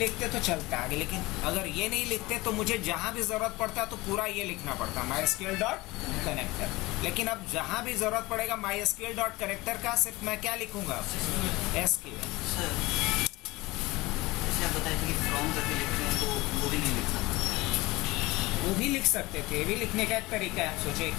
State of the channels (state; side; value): quieter; right; 21.2 dB